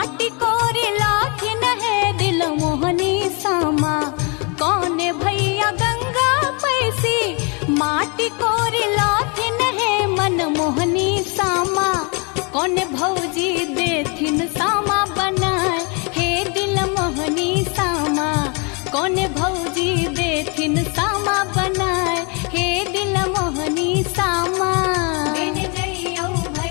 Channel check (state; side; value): quieter; right; 33.2 dB